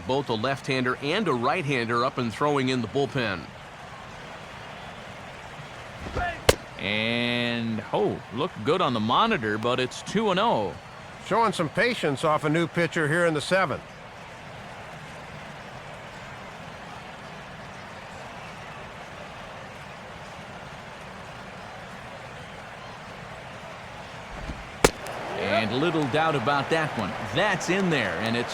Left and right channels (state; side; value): identical; both; correlation 1.00